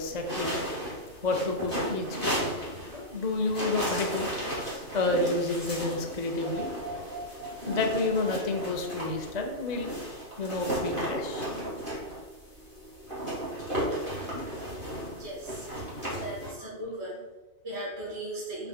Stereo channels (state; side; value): late; left; 2.5 ms